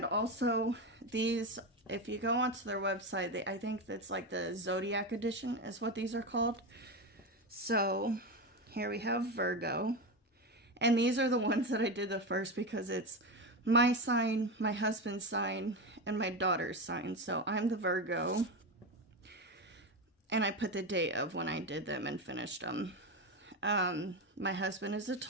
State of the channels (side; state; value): both; normal; correlation 0.17